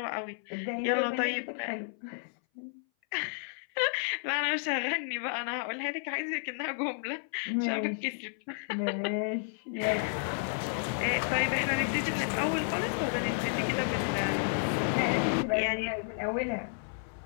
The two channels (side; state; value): right; silent; 57 dB below the other